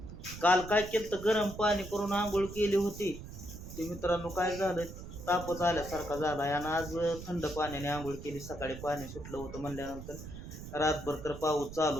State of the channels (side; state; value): right; noise; rumble, 11 dB below the sound